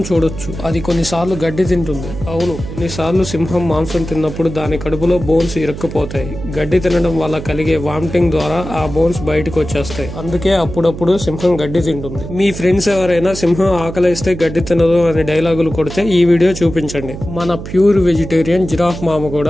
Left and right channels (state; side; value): noise; right; hum, 10 dB below the sound